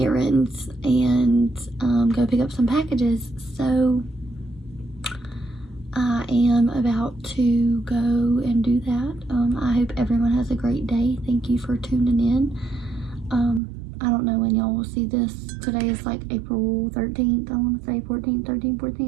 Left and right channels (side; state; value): left; drops out; at 13.6 s